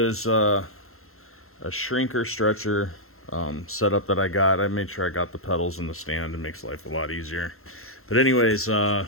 a shrinker stretcher setup that I got. I made sure I got the pedals in the stand. It makes life a lot easier. But anyways, I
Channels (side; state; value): right; late; 0.62 ms